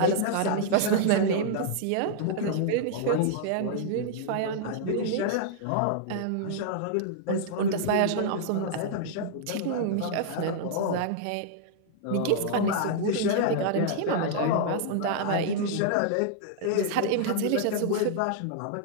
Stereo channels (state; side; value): different; both; correlation -0.01